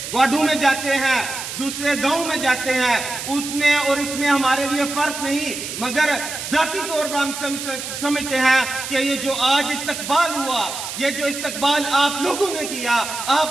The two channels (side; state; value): right; noise; hiss, 7 dB below the sound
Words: वार्डों में जाते हैं दूसरे गांव में जाते हैं, उसमें और इसमें हमारे लिए फर्क नहीं, मगर जाती तौर पर हम समझते हैं कि ये जो आज इस्तकबाल हुआ, ये जो इस्तकबाल आप लोगों ने किया,